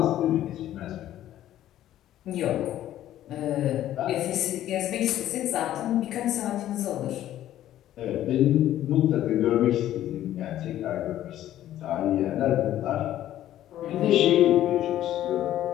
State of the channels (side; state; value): right; quieter; 12.7 dB